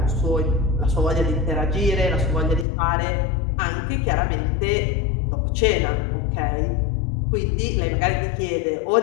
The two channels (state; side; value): drops out; right; at 2.7 s